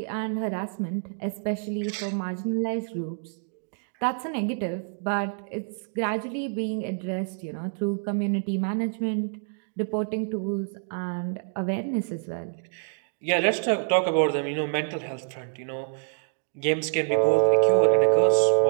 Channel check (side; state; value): left; silent; digital silence